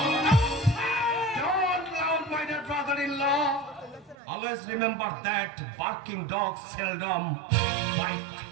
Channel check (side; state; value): left; drops out; at 4.2 s